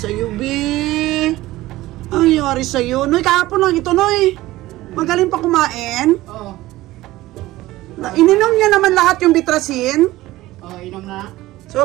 be? Ano nangyari sa'yo? Noy, kahapon lang ito, Noy. Magaling pa kumain. Ininom niya naman lahat yung bitrasin. Inom na. So,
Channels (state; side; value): quieter; left; 17.2 dB